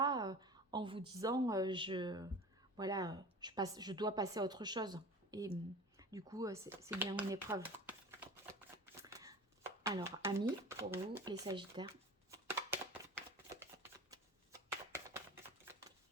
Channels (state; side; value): normal; both; correlation 0.37